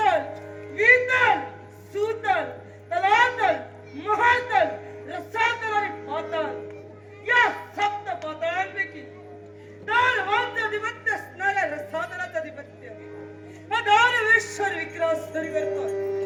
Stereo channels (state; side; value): identical; both; correlation 1.00